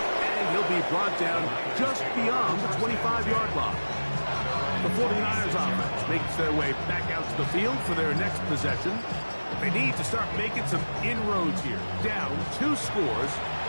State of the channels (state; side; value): inverted; both; correlation -1.00